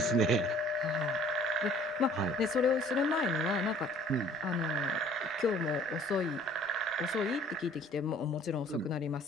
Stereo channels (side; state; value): both; normal; correlation 0.53